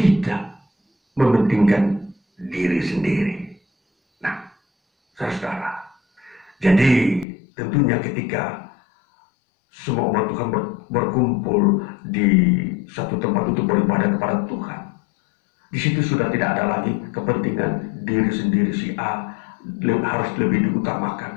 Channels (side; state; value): right; drops out; at 7.2 s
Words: mementingkan diri sendiri. Nah, saudara, jadi tentunya ketika semua umat Tuhan berkumpul di satu tempat untuk beribadah kepada Tuhan, di situ sudah tidak ada lagi kepentingan diri sendiri, si A harus lebih